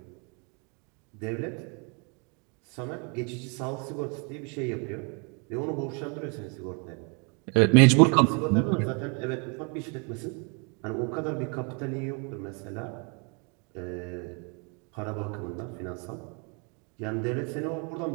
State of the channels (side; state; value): left; quieter; 34.5 dB